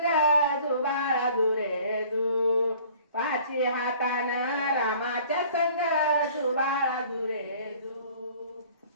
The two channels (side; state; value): both; inverted; correlation -0.51